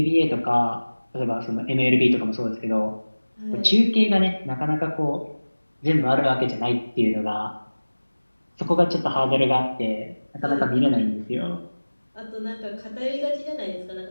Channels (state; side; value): inverted; both; correlation -1.00